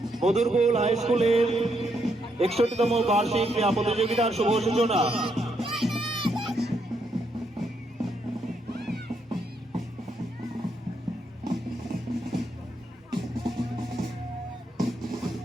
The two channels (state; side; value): normal; both; correlation 0.77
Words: মধুরকুল হাই স্কুলের 61তম বার্ষিক ক্রীড়া প্রতিযোগিতার শুভ সূচনা।